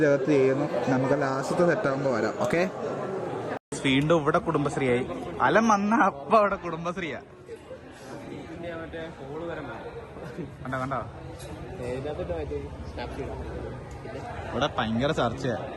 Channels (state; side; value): identical; both; correlation 1.00